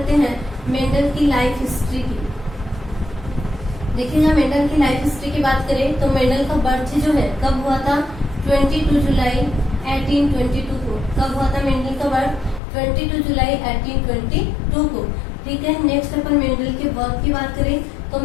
हैं मेंडल की लाइफ हिस्ट्री की। देखिएगा, मेंडल की लाइफ हिस्ट्री की बात करें तो मेंडल का बर्थ जो है कब हुआ था? 22 जुलाई 1822 को। कब हुआ था मेंडल का बर्थ? 22 जुलाई 1822 को, ठीक है। नेक्स्ट अपन मेंडल के वर्क की बात करें तो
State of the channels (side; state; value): right; drops out; at 12.6 s